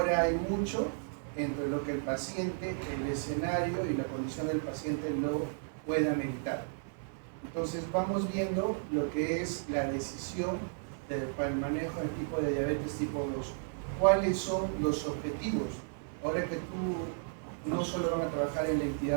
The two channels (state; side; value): silent; left; 55 dB below the other